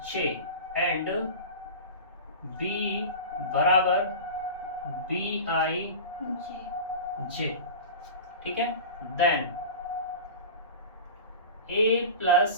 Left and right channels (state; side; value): inverted; both; correlation -0.31